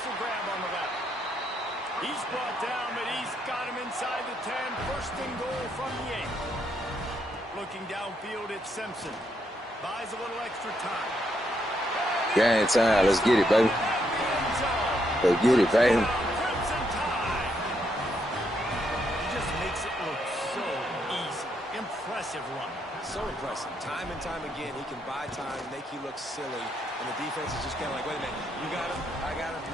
the grab on the left. He's brought down, but he's got him inside the 10. First and goal from the 8. Looking downfield, it's Simpson. Buys a little extra time. Game time. Let's get it, baby. Let's get it, baby. Crimson Tide. Just makes it look so easy. Impressive run. So impressive. Time and time again, he can buy time, make you look silly, and the defense is just kind of like, wait a minute, you got him? I got him?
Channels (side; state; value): both; normal; correlation 0.77